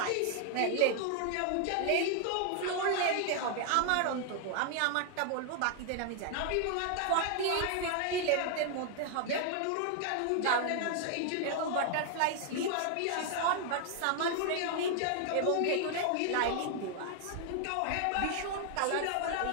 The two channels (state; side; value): different; both; correlation 0.00